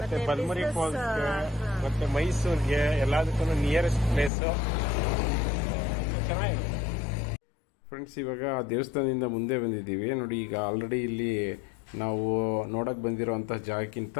ಬಲ್ಮುರಿ ಫಾಲ್ಸ್ ಮತ್ತೆ ಮೈಸೂರ್ಗೆ ಎಲ್ಲದಕ್ಕೂ ನಿಯರೆಸ್ಟ್ ಪ್ಲೇಸ್ ಚೆನ್ನಾಗಿರುತ್ತೆ. ಫ್ರೆಂಡ್ಸ್, ಇವಾಗ ದೇವಸ್ಥಾನದಿಂದ ಮುಂದೆ ಬಂದಿದ್ದೀವಿ ನೋಡಿ. ಈಗ ಆಲ್ರೆಡಿ ಇಲ್ಲಿ ನಾವು ನೋಡಕ್ ಬಂದಿರೋಂಥ ಜಾಗಕ್ಕಿಂತ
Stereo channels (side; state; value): right; drops out; at 4.3 s